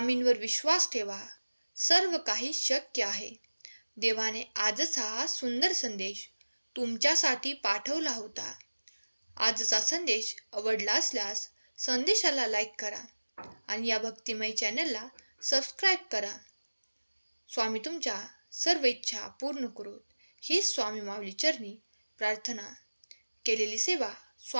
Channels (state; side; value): inverted; both; correlation -1.00